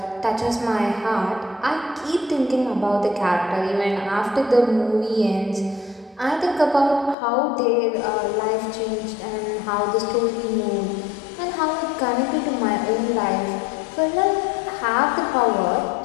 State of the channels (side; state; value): right; drops out; at 7.2 s